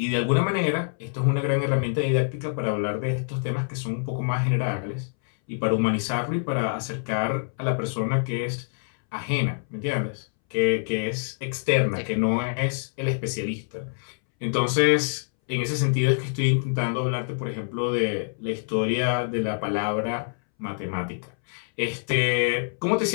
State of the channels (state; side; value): silent; right; 61 dB below the other